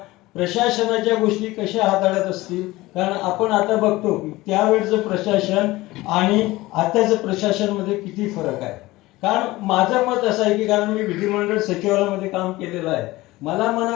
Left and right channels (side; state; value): right; quieter; 19.1 dB